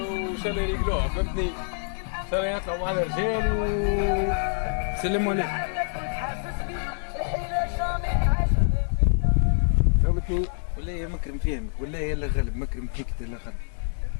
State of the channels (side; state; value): right; silent; 61 dB below the other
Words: وشال رجلوها فهمتني. شال يطلعوا مع الرجال وسلموا عليه فهمتني. ولا يا مكرم فهمك ولا يلا غلب مكرم فيك لا غلب.